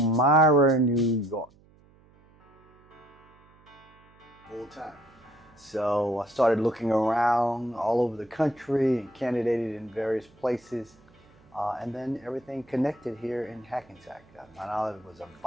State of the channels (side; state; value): right; noise; hum, 29 dB below the sound